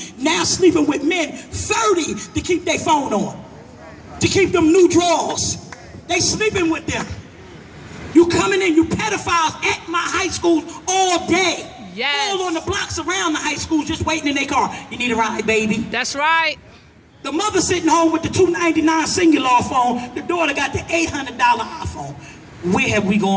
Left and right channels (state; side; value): identical; both; correlation 1.00